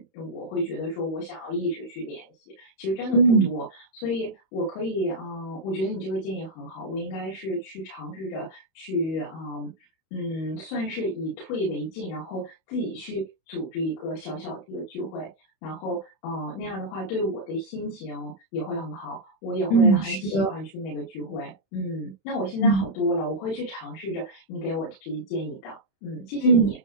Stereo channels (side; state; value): right; late; 31 ms